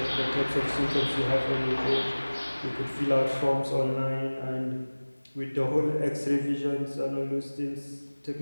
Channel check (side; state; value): both; inverted; correlation -1.00